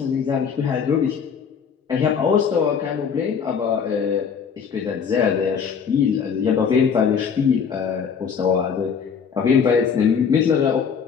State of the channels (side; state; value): right; quieter; 6.6 dB